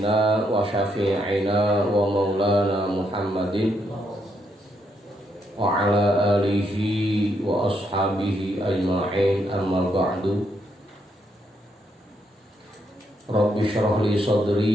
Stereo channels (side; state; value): both; normal; correlation 0.77